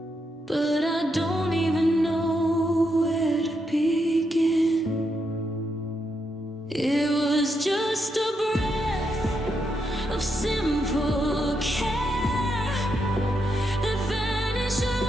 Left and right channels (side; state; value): both; normal; correlation 0.81